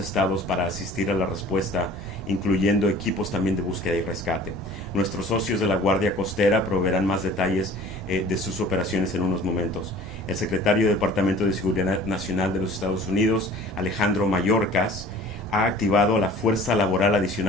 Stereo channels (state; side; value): normal; both; correlation 0.46